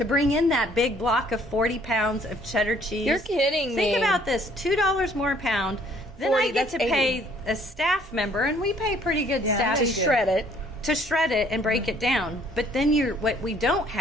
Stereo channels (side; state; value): both; normal; correlation 0.60